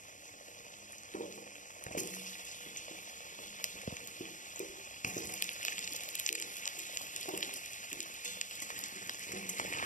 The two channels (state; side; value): late; right; 0.37 ms